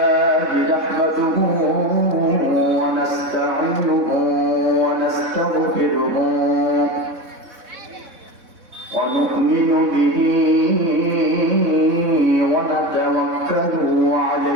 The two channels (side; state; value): left; late; 3.6 ms